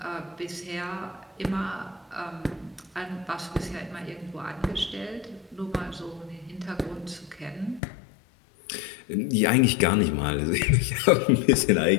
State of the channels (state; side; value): drops out; right; at 7.8 s